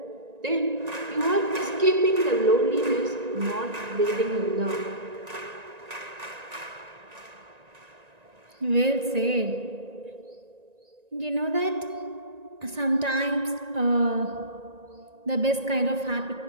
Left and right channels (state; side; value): late; left; 1.9 ms